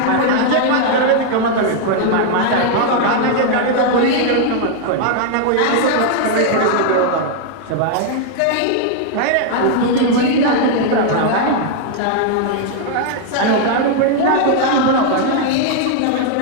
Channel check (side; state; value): both; different; correlation 0.00